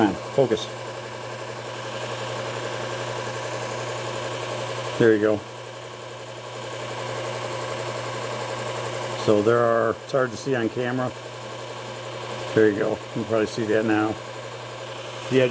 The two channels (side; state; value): both; identical; correlation 1.00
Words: on, focus. There you go. So there are, it's hard to see on camera. There you go. You can probably see that now. The